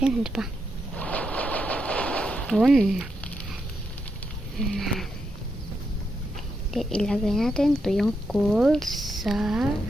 Yan, diba? Yun. Ilagay natin ito yung coal sa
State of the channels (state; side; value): normal; both; correlation 0.83